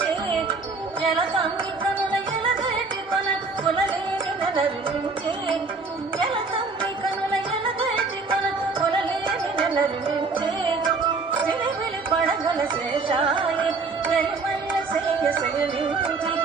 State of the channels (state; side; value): quieter; left; 4.2 dB